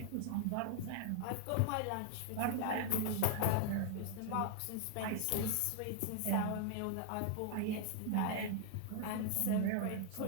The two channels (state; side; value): different; both; correlation 0.00